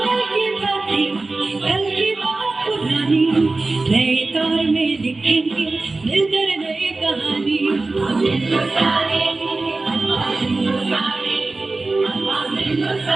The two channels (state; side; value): quieter; left; 3.4 dB